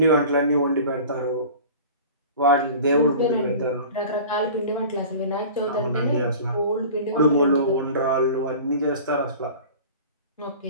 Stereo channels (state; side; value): inverted; both; correlation -0.40